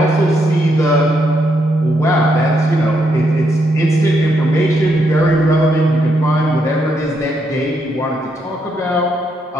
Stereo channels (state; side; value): normal; both; correlation 0.77